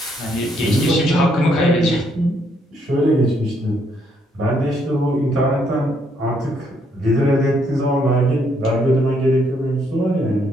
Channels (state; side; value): normal; both; correlation 0.72